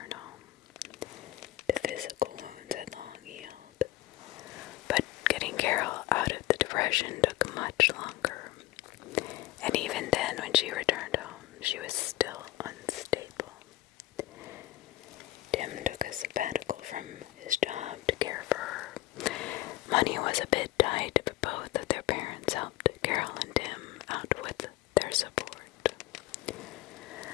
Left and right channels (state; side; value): quieter; right; 16.4 dB